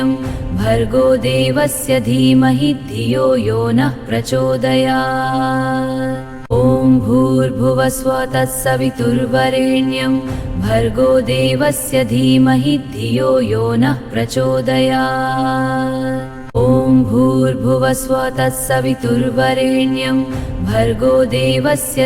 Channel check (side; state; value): both; identical; correlation 1.00